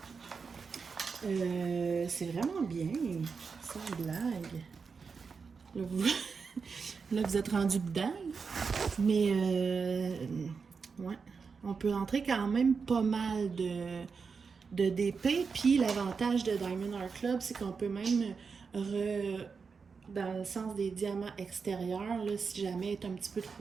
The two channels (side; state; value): left; quieter; 5.3 dB